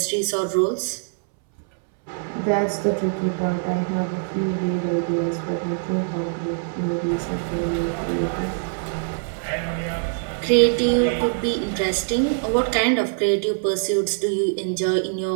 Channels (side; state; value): left; silent; 63 dB below the other